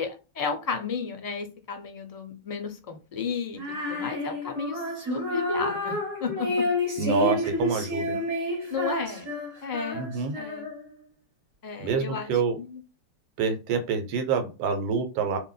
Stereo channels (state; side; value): late; left; 4.8 ms